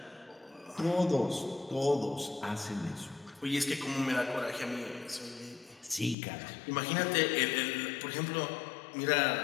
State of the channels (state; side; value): drops out; right; at 6.2 s